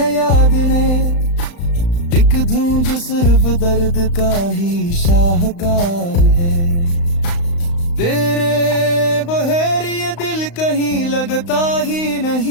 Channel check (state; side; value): late; right; 35 ms